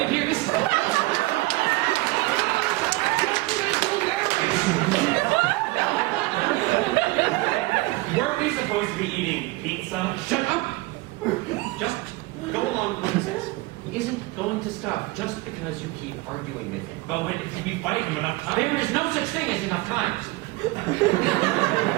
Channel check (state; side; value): quieter; left; 21.7 dB